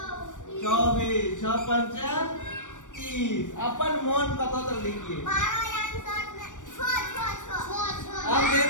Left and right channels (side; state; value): right; late; 0.87 ms